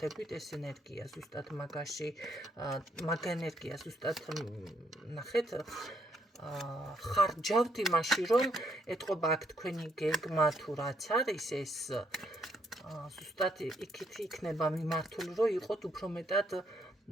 ეს ენერგია ზუსტად მაგაში, მაგ ენერგია ზუსტად ნახეთ, ხარჯავთ იმაში, რომ ეთყობა აქ თქვენი გეგმა თუ რაც არის, ეს ზუსტად იქით იქნება მიმართული, რომ იყოთ უფრო მეტად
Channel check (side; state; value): both; normal; correlation 0.72